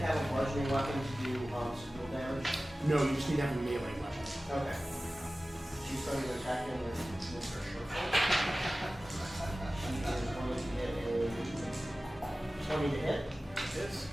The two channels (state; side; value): normal; both; correlation 0.96